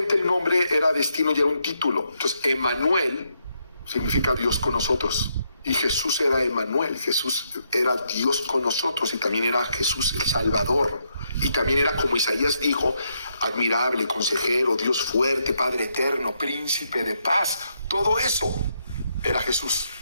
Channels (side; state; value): both; inverted; correlation -0.78